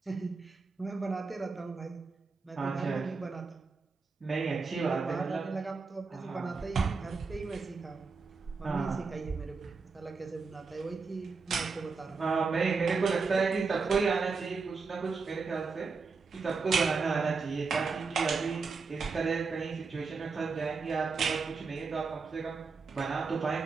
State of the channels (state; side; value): quieter; left; 4.6 dB